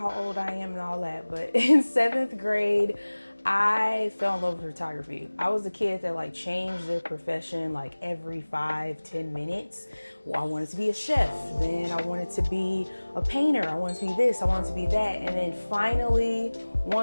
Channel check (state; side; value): inverted; both; correlation -1.00